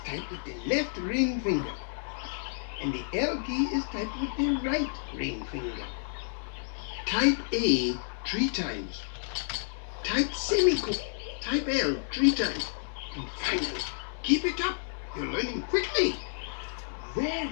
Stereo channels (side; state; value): right; silent; digital silence